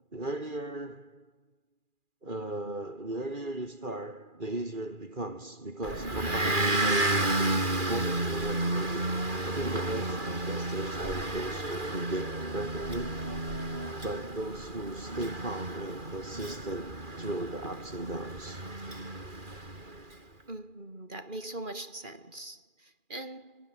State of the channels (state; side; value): late; left; 2.4 ms